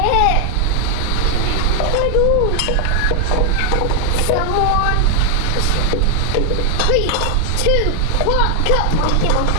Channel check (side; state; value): both; different; correlation 0.00